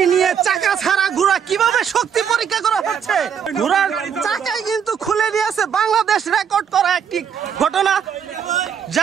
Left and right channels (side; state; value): left; quieter; 7.8 dB